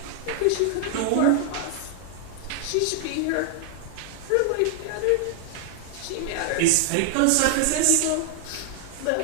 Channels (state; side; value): different; both; correlation 0.00